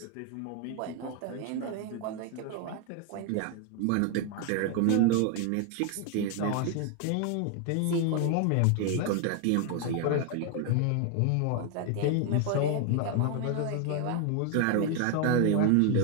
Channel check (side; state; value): both; different; correlation 0.00